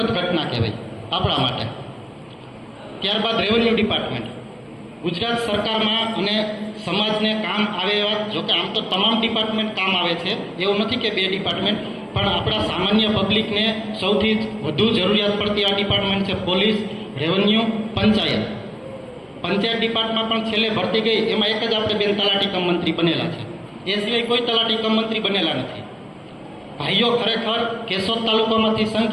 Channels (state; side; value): identical; both; correlation 1.00